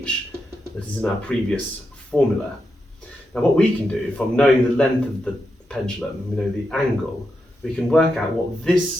that is in our previous formula. Now what we can do, from knowing the length of the pendulum, we know the angle, we can work out what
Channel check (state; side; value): normal; both; correlation 0.86